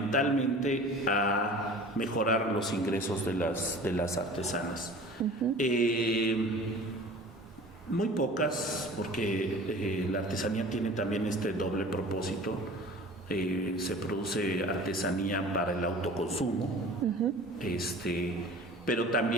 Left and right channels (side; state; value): both; normal; correlation 0.42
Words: a mejorar los ingresos de las artesanas. Muy pocas, porque la artesanía tiene también este doble propósito. Se produce artesanía para el autoconsumo, pero